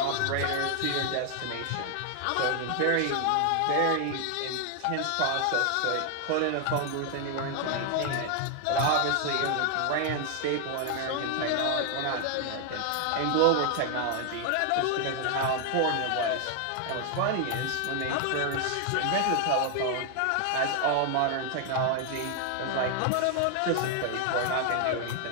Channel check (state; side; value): different; both; correlation 0.00